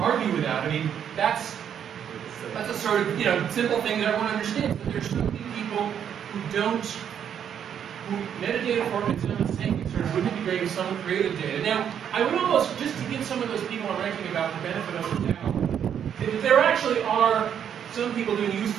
with that. I mean, that's a sort of simple thing that everyone understands. But there's so many people who metadata formats don't think sort of wouldn't it be great if someone created data. Now, I would almost, just to give some of those people I'm ranking about the benefit of the doubt, that there actually are some people doing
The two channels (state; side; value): quieter; left; 8.8 dB